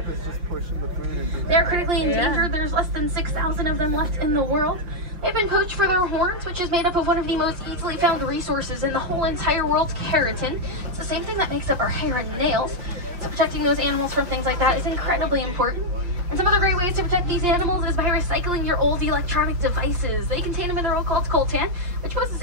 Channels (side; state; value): left; late; 5.7 ms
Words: They're critically endangered. There's less than 6,000 of them left in the world. They've been poached for their horns, which is made up of one of the most easily found resources in the whole entire world, keratin. It's the same thing that makes up our hair and nails. So protecting those animals from things like that is incredibly important. And some other great ways to protect these animals is by recycling your old electronic devices. They contain a mineral called coltan, which poses